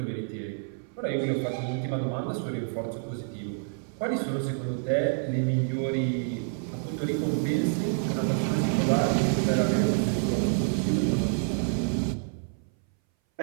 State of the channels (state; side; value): silent; left; 59 dB below the other